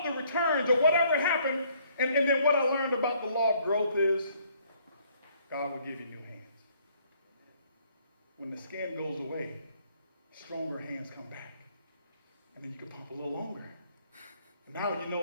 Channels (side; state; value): both; inverted; correlation -0.64